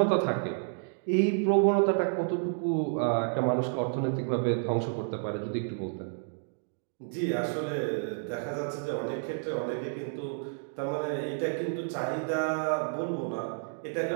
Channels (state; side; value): silent; left; digital silence